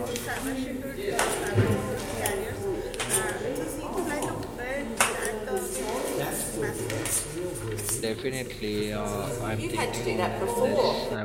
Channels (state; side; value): identical; both; correlation 1.00